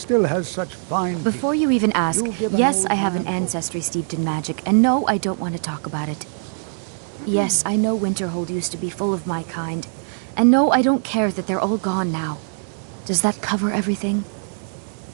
has such fine... Before you even ask, You'll give an yes, old I have an man ancestry steeped in magic, and no, I don't want to talk about it. Yes, I know Winterhold used to be full of my kind, and no, I don't care that they're all gone now. Does that cover everything?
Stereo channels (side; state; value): left; silent; digital silence